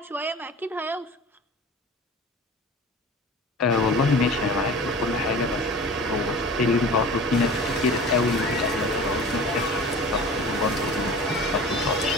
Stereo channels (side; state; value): both; normal; correlation 0.39